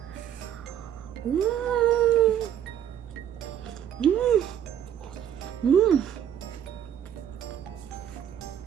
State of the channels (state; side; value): quieter; left; 9.9 dB